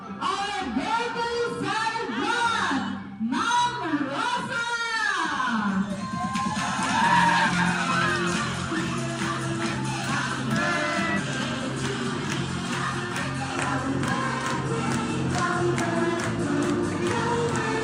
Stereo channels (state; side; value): identical; both; correlation 1.00